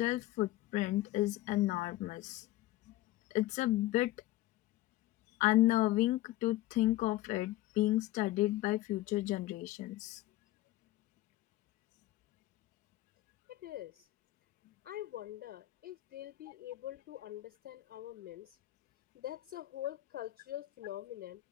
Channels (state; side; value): quieter; right; 16.4 dB